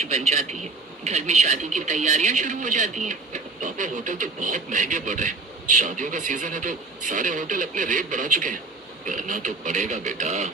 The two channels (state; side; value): quieter; left; 3.6 dB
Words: बन जाती है। घर में शादी की तैयारियां शुरू हो जाती हैं। पापा, होटल तो बहुत महंगे पड़ रहे हैं। शादियों का सीजन है, तो सारे होटल अपने रेट बढ़ा चुके हैं। करना तो पड़ेगा बेटा,